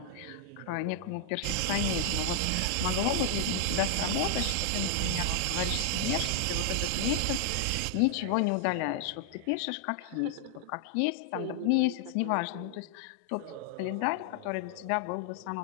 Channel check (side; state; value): both; different; correlation 0.00